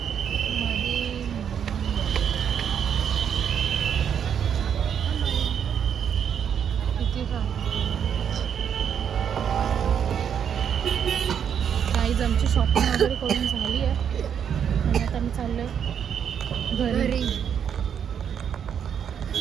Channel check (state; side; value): quieter; left; 8.2 dB